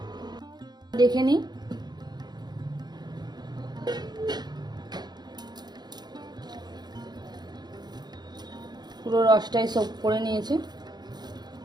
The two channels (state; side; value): late; left; 0.20 ms